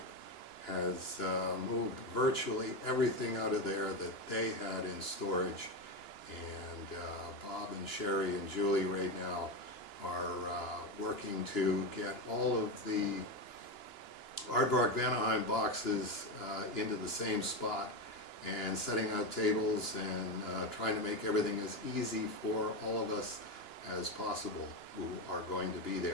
has moved virtually everything out of there that they had in storage. And Bob and Sherry and Julie right now are working to get all of the Aardvark Vanaheim boxes into the same spot and setting out tables and trying to make everything as easy for all of us as possible who are going to be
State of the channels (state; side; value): late; right; 2.9 ms